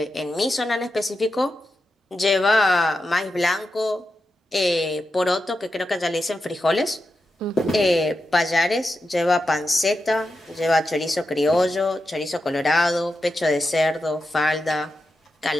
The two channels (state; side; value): normal; both; correlation 0.89